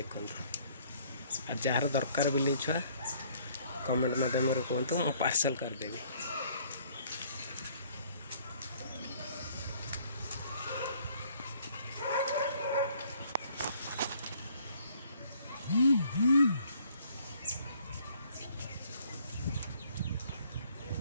आ जार दरकार बिलई छुआ कमेंट माध्यम कहतु, मु पार्सल करदेवी।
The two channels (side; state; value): both; inverted; correlation -0.61